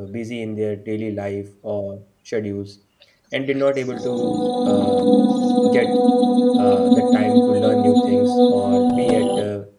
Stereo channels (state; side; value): identical; both; correlation 1.00